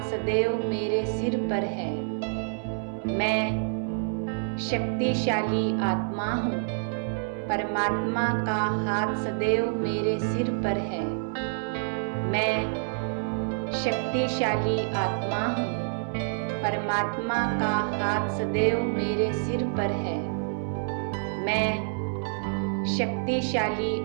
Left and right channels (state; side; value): silent; left; 58 dB below the other